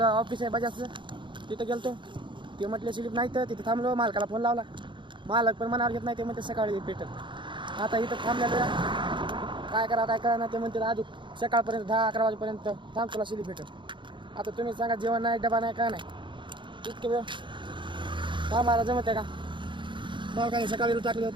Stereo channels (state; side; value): late; left; 0.23 ms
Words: ऑफिस आहे बजाजचं, तिथं गेलतो. ते म्हटले स्लिप नाही तर तिथं थांबलो. मालकाला फोन लावला, मालक पण मनावर घेत नाही. ते म्हणते सकाळी पेट्रोल. आता इथं थांबलेलो काय करा ना. ते म्हणते अजून सकाळपर्यंत 10-11 वाजेपर्यंत थांब, तुला स्लिप भेटेल. आता तुम्ही सांगा, जेवण नाही, डबा नाही, काय नाही, इतके वेळ थांबायला जमत आहे का? मग काय सकाळी टाकले